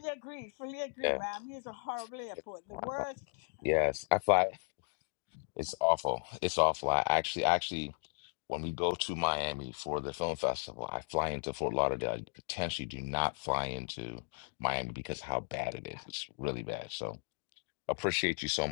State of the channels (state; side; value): silent; right; digital silence